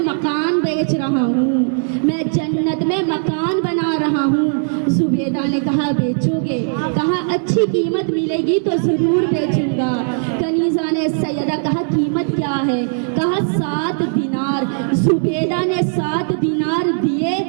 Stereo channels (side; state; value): left; silent; 67 dB below the other